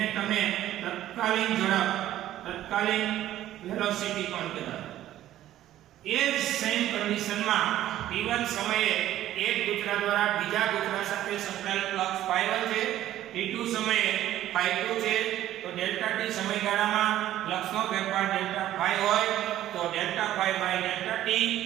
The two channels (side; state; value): left; quieter; 13.2 dB